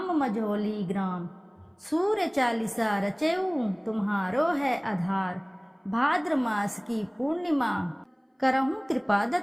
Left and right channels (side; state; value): both; identical; correlation 1.00